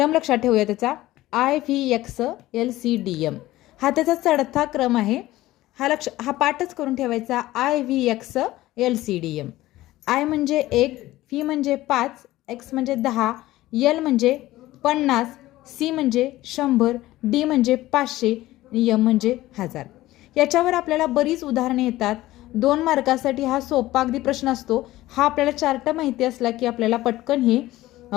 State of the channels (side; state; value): right; quieter; 16.6 dB